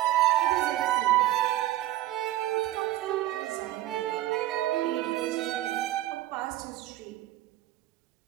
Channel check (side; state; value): left; quieter; 15.1 dB